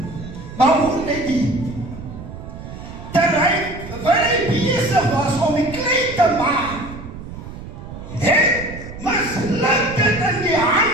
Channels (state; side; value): noise; right; rumble, 12 dB below the sound